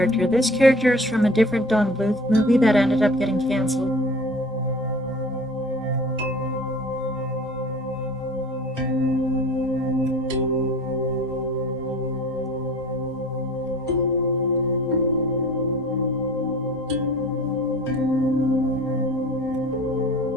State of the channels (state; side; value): normal; both; correlation 0.43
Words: This character is from a different Don Bluth movie that ended up getting canceled.